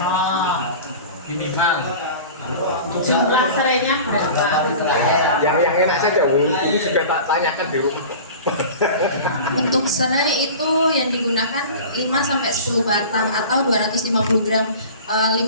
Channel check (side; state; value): both; inverted; correlation -0.37